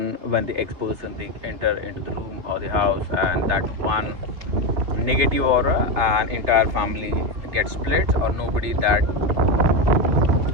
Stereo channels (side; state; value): left; late; 3.3 ms